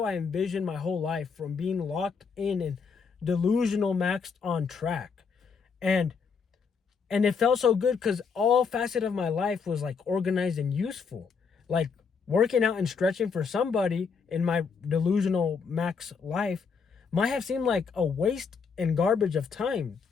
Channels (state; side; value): quieter; right; 5.6 dB